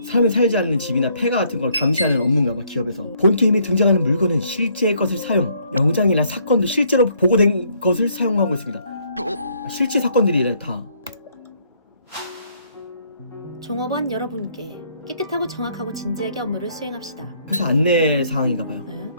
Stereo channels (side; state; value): both; inverted; correlation -0.66